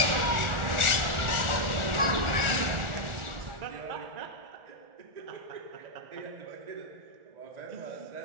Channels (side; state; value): left; late; 1.4 ms